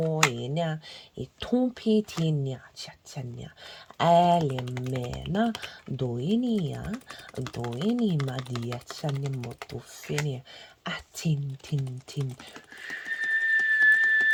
enia itumpi tinia chatania alimena doinia madia chanimo tufinia atin tin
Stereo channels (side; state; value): both; identical; correlation 1.00